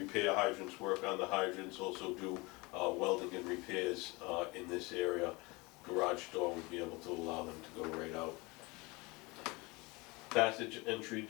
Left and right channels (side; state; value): right; quieter; 25.2 dB